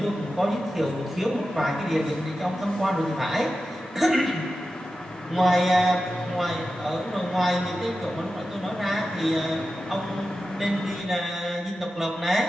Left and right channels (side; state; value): both; normal; correlation 0.92